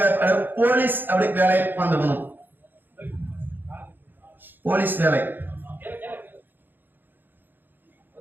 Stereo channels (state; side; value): late; left; 0.092 ms